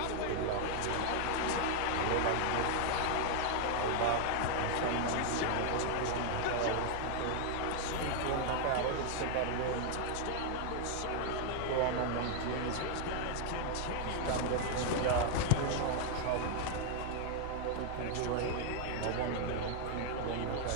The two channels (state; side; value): different; both; correlation 0.00